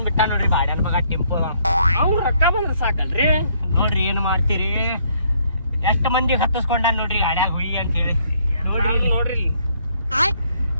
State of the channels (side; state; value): both; inverted; correlation -0.68